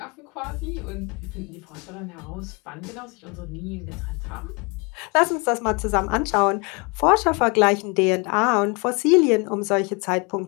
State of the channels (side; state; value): right; quieter; 30.7 dB